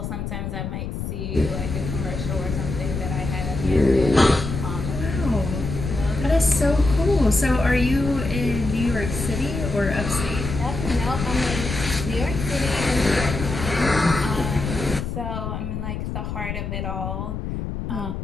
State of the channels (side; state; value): left; noise; rumble, 5 dB below the sound